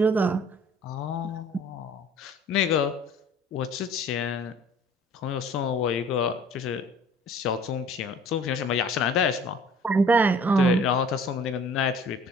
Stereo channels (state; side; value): normal; both; correlation 0.51